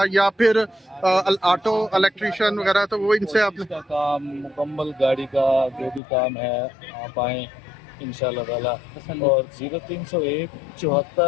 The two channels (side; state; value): right; drops out; at 6.0 s